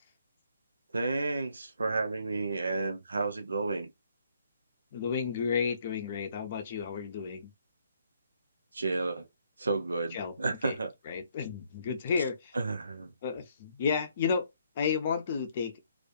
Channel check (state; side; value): inverted; both; correlation -0.70